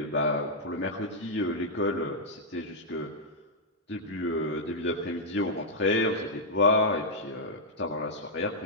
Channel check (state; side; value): normal; both; correlation -0.06